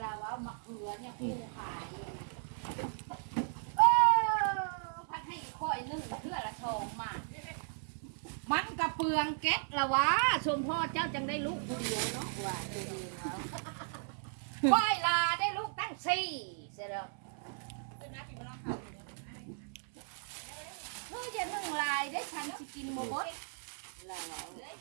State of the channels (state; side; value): silent; left; 54 dB below the other